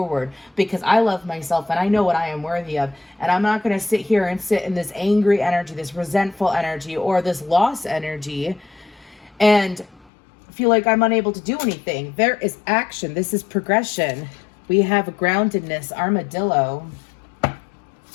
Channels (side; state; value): right; drops out; at 10.1 s